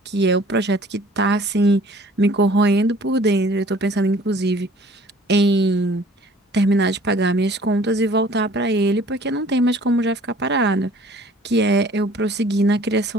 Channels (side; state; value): both; normal; correlation 0.52